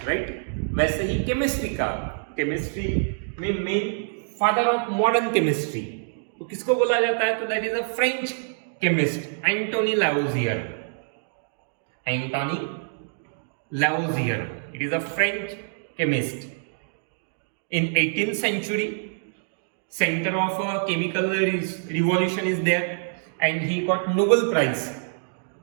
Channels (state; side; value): silent; left; digital silence